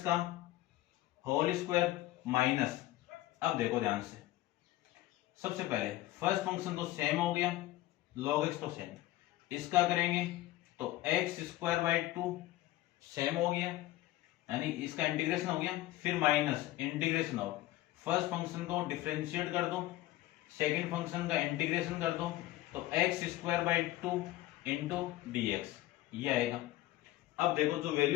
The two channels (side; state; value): right; quieter; 16.3 dB